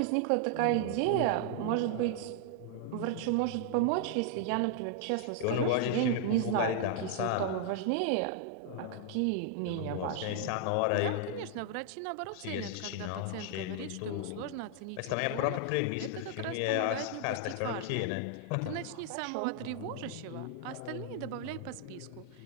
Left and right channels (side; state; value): both; different; correlation 0.00